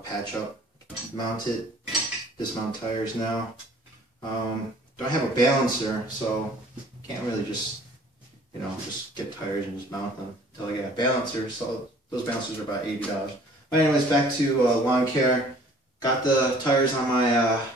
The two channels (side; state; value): both; normal; correlation 0.53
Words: patch up, mount it, dismount tires now. Don't have a balancer, so can't really just, just get tires and just mount them until I get a balancer. So those balancers are about $80. But anyways, back to lawn care. Got the tires on my